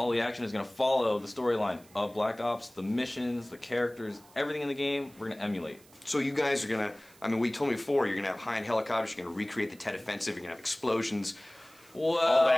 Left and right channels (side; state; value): right; noise; hiss, 26 dB below the sound